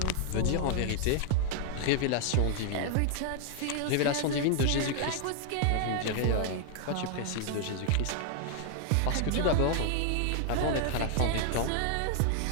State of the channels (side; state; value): both; different; correlation 0.00